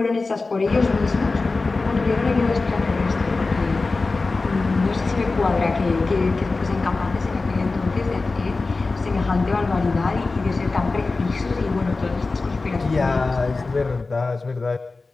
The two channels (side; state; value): right; quieter; 3.7 dB